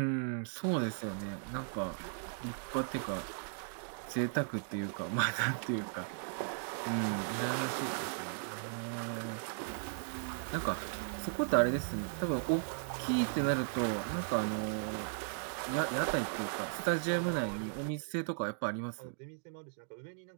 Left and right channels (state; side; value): silent; left; digital silence